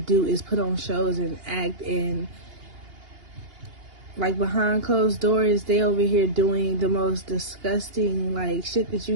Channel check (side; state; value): left; late; 2.8 ms